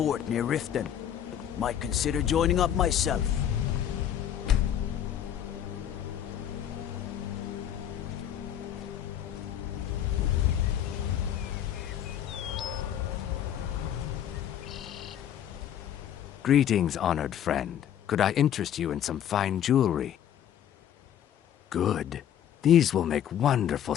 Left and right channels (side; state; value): right; quieter; 10.1 dB